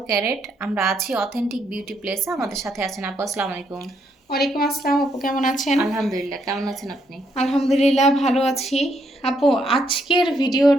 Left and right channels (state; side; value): normal; both; correlation 0.75